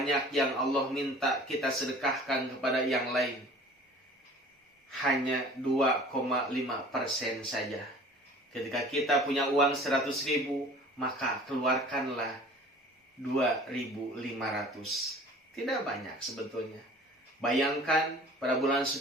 yang Allah minta kita sedekahkan kepada yang lain. Hanya 2,5% saja. Ketika kita punya uang 100.000, maka keluarkanlah 2.500. Tidak banyak sebetulnya. Bayangkan pada bulan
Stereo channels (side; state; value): both; normal; correlation 0.46